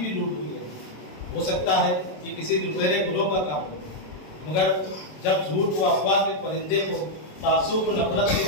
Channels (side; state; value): right; late; 27 ms